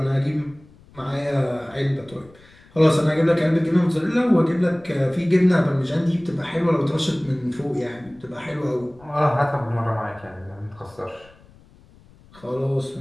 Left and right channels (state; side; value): noise; left; rumble, 26 dB below the sound